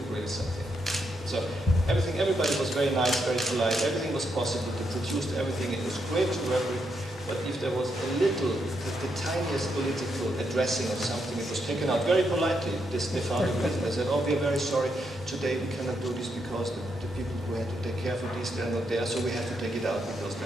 something. So everybody was very nice, very polite. Everything was possible to produce everything. It was great to work with. But if there was a little, the tiniest political addressing of something, it was taken out very politely. They found it with. They said, "Oh, we are very sorry. Today we cannot do this because the people who had to take care for this, they're not there. So we have to take it out because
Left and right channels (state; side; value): normal; both; correlation 0.80